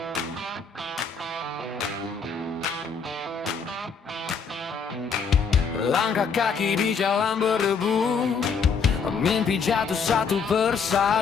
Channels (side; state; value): right; quieter; 5.6 dB